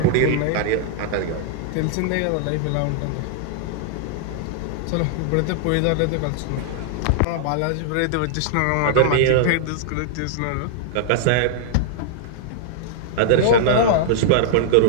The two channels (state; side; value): different; both; correlation -0.01